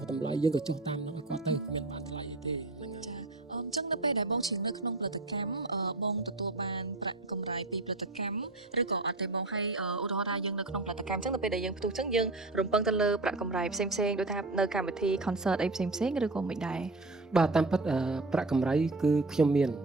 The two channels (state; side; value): quieter; left; 3.0 dB